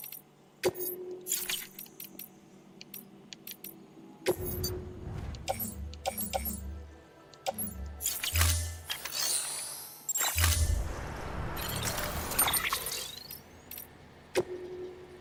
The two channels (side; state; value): both; identical; correlation 1.00